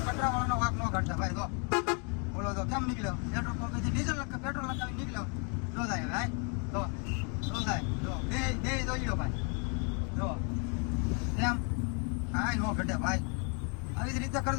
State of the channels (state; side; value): quieter; right; 36.8 dB